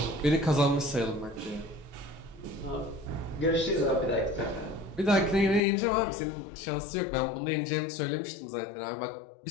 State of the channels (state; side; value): drops out; right; at 5.6 s